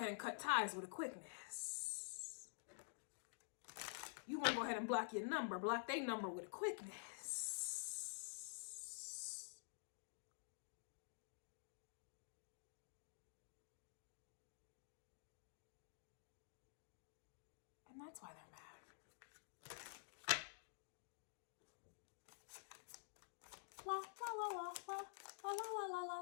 and cut ties with a quickness. You're going to go ahead and block your number. Block their number with a quickness. And that's why they're mad. La la la la la la la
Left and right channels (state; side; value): silent; right; digital silence